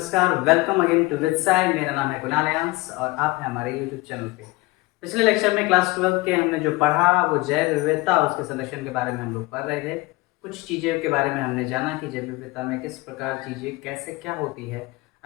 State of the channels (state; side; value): quieter; right; 21.8 dB